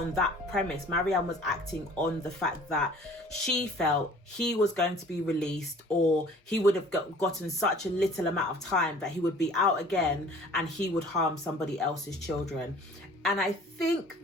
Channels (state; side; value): normal; both; correlation 0.50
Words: that premise. Marianne was acting on the fact that she felt he was going to be released, or he would have gotten such a little amount of time that he would be out again and he would harm somebody else's children. And I think